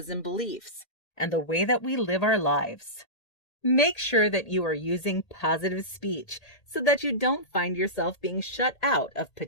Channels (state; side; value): late; right; 1.8 ms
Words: and beliefs, and the way that we live our lives. Make sure that you are using positive speech so that you don't find yourself being shut out of